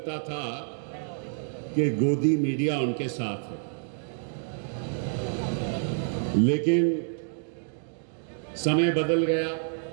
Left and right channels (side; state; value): left; silent; digital silence